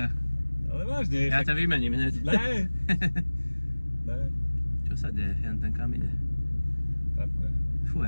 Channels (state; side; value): inverted; both; correlation -1.00